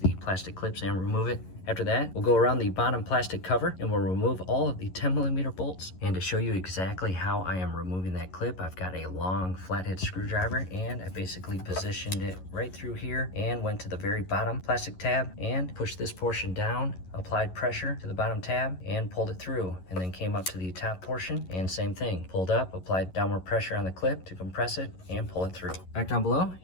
plastic clips and remove it. After that, we'll go around the bottom plastic cover and we'll remove all of the 10mm bolts. And to show you exactly how I am removing that clip, I've got a long flathead screwdriver and I basically positioned it right through here and went to the very bottom plastic tab and pushed this portion down, applied pressure to the bottom tab and pulled it through, and then came up to the top portion and same thing. Pulled up, applied downward pressure on the clip to compress it and pull it through. Back down below,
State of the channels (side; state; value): right; late; 11 ms